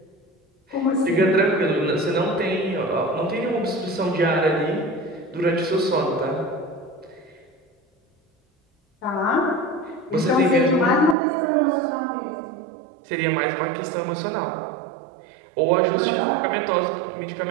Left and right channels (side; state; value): left; drops out; at 11.2 s